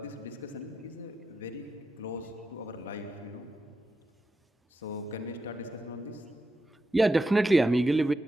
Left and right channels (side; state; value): both; normal; correlation 0.88